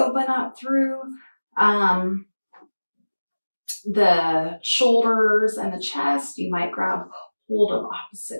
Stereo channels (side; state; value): both; inverted; correlation -1.00